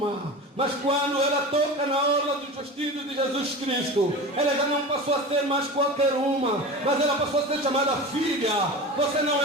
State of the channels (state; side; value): normal; both; correlation 0.30